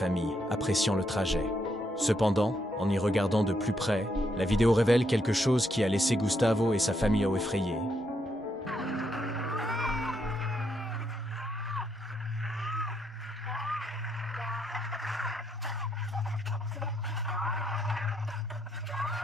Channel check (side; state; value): both; normal; correlation 0.76